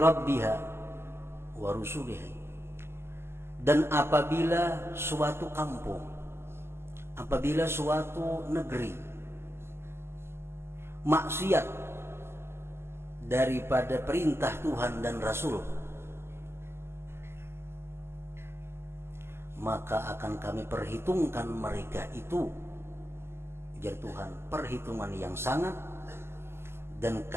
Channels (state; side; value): late; left; 0.12 ms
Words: rabbiha wa rusulihi, dan apabila suatu kampung, apabila suatu negeri maksiat daripada perintah Tuhan dan Rasul, maka akan kami perhitungkan mereka itu, ujar Tuhan, perhitungan yang sangat, dan